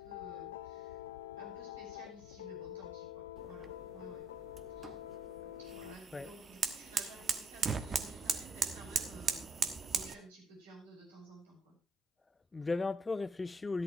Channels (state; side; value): normal; both; correlation 0.74